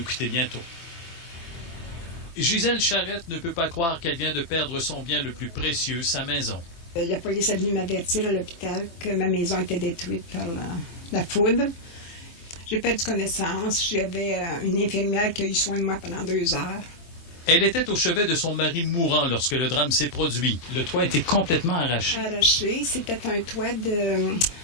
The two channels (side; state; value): right; late; 24 ms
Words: quitter bientôt. Gisèle Charette ne peut pas croire qu'elle vient de perdre son bien le plus précieux, sa maison. La police est venue m'avertir à l'hôpital que ma maison était détruite par la foudre. J'ai perdu connaissance. J'avais une infirmière qui a eu soin de moi pendant 2 heures. Elle était au chevet de son mari mourant lorsque le drame s'est produit. Le toit était complètement arraché. Arraché, c'était un toit